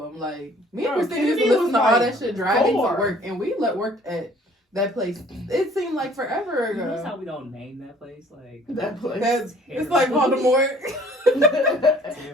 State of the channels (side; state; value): both; normal; correlation 0.55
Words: Like, me and Bro, Christina used to Kennedy listen was to all like that shit driving 4. to work, and we worked at that place. It seemed like forever You notice how ago. we don't name that place? Like That place. That's, terrible. it's like Voldemort.